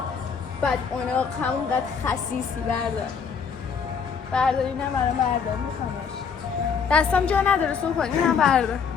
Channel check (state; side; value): quieter; right; 6.2 dB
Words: بدعناق، همونقدر خسیسی. بردار اینم برام بردار، میخوامش. دستم جا نداره صبح کن، اینم بردار.